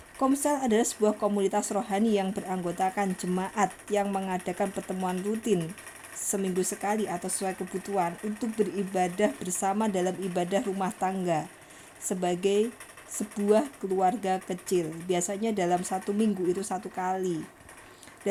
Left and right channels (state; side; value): identical; both; correlation 1.00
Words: Komsel adalah sebuah komunitas rohani yang beranggotakan jemaat yang mengadakan pertemuan rutin seminggu sekali atau sesuai kebutuhan untuk beribadah bersama dalam ibadah rumah tangga sebagai sebuah keluarga kecil. Biasanya dalam 1 minggu itu 1 kali.